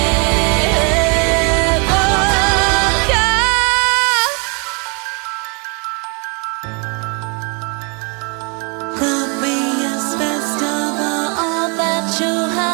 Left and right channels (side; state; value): left; quieter; 34.3 dB